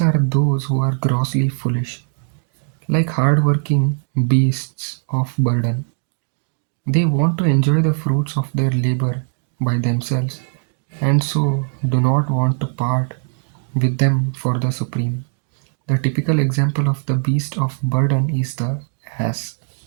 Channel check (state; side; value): silent; left; 66 dB below the other